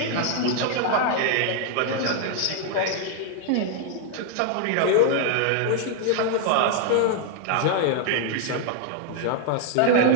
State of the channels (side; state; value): both; different; correlation 0.00